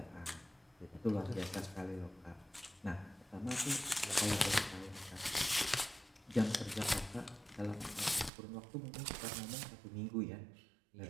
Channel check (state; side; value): drops out; left; at 8.3 s